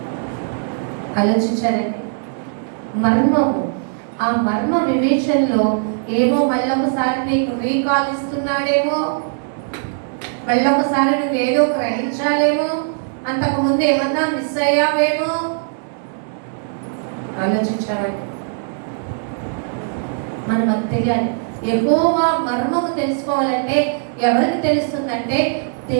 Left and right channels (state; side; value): silent; left; digital silence